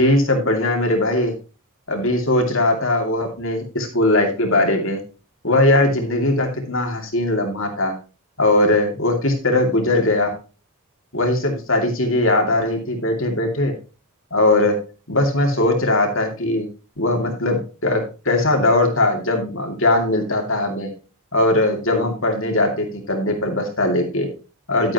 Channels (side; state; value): both; normal; correlation -0.10